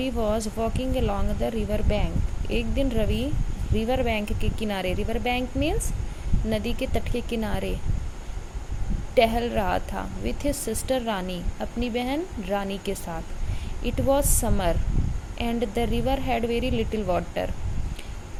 was walking along the river bank. एक दिन रवि river bank के किनारे, river bank means नदी के तट के किनारे टहल रहा था with his sister रानी, अपनी बहन रानी के साथ. It was summer and the river had very little water.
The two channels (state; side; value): identical; both; correlation 1.00